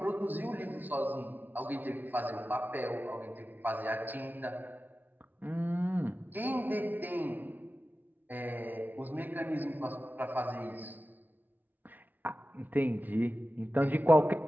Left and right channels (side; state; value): left; late; 0.083 ms